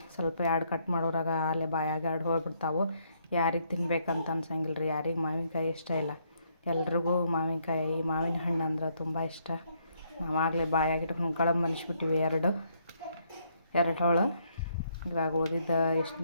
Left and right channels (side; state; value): both; inverted; correlation -0.71